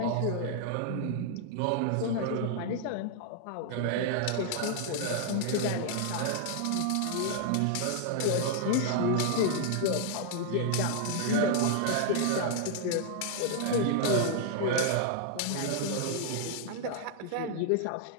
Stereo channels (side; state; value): both; different; correlation -0.01